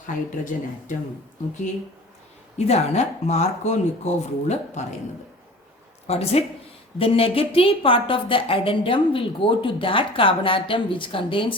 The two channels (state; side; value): normal; both; correlation 0.41